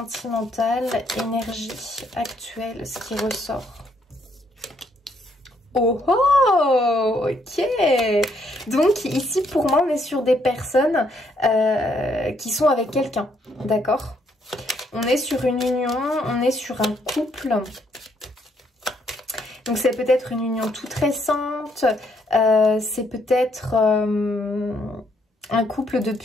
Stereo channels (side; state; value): both; normal; correlation 0.71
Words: énergie actuelle, ce qui ressort. Oh oh, ok. Donc ici, pour moi, on est sur des personnes qui sont avec quelqu'un, d'accord? On est sur une union, on est sur un couple. Donc c'est peut-être une union toute récente, c'est peut-être un couple